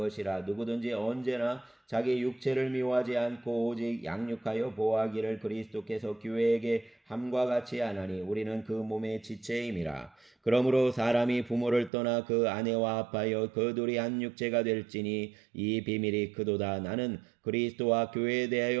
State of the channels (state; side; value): drops out; left; at 11.9 s